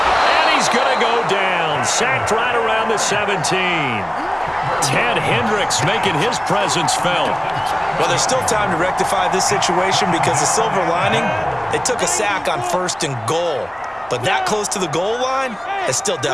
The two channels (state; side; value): noise; left; hum, 29 dB below the sound